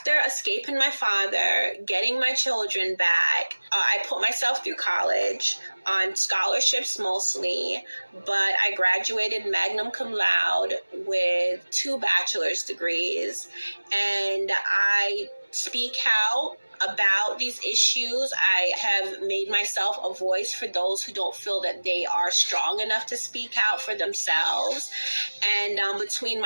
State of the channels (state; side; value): inverted; both; correlation -1.00